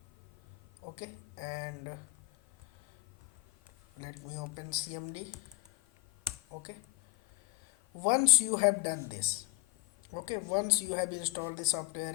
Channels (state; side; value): quieter; right; 20.0 dB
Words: Okay, and let me open CMD. Okay, once you have done this, okay, once you have installed the